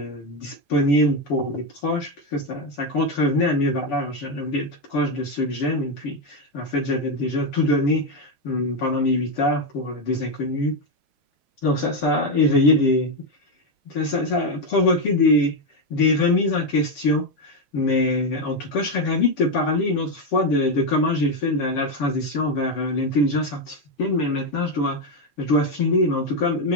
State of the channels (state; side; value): normal; both; correlation 0.07